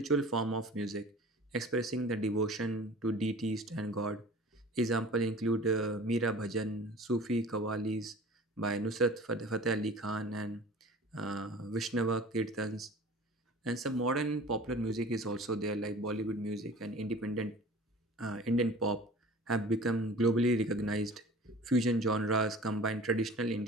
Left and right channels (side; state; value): both; normal; correlation 0.42